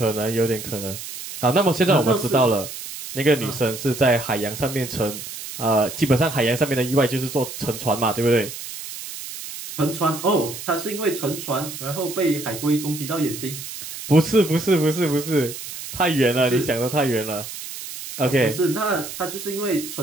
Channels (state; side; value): noise; right; hiss, 10 dB below the sound